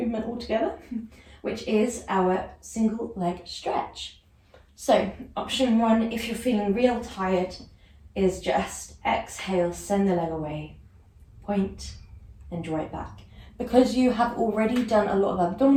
altogether, which is our single leg stretch. So option 1, if you're feeling real tired, is just exhale, send the leg away, point and draw it back. Because you have already done a lot of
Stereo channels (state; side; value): identical; both; correlation 1.00